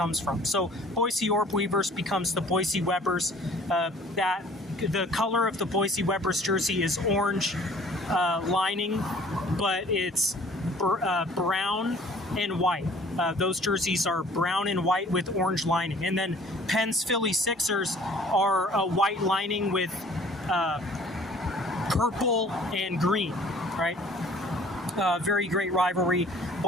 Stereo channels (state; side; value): normal; both; correlation 0.53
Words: from. So Boise Orbweavers becomes the Boise Webbers. The color of the Boise Webbers jersey is orange lining, but it's brown and white. Those jerseys are brown and white with orange lining. And then Penn's Philly Sixers are a white lining with purple and green, right? Very great rivalry.